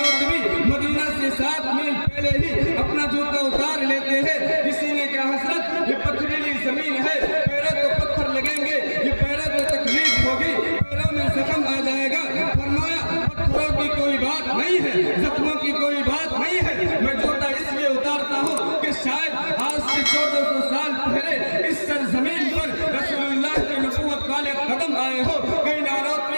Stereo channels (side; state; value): both; inverted; correlation -1.00